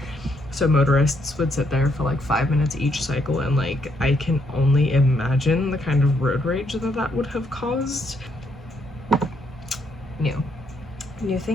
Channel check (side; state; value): both; normal; correlation 0.74